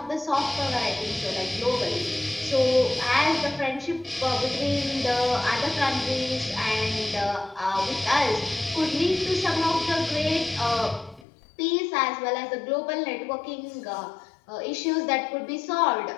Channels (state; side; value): drops out; right; at 11.2 s